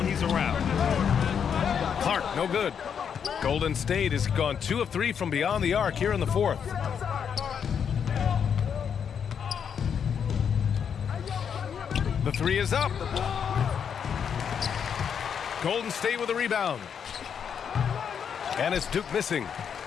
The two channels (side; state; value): right; quieter; 7.5 dB